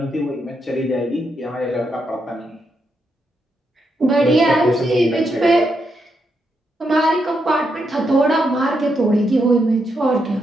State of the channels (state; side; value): normal; both; correlation 0.81